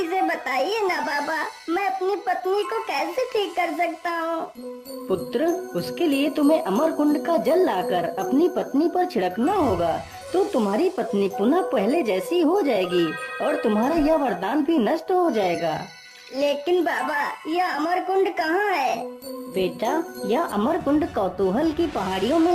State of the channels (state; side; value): identical; both; correlation 1.00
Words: से बताइए ना बाबा, मैं अपनी पत्नी को कैसे ठीक कर सकता हूँ? पुत्र, उसके लिए तुम्हें अमर कुंड का जल लाकर अपनी पत्नी पर छिड़कना होगा तो तुम्हारी पत्नी पुनः पहले जैसी हो जाएगी और तुम्हारा यह वरदान भी नष्ट हो जाएगा। लेकिन बाबा, यह अमर कुंड कहाँ है? बेटा, यह अमर कुंड कौतूहल की पहाड़ियों